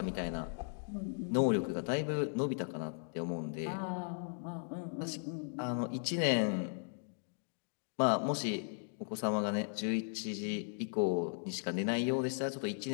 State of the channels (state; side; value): silent; right; digital silence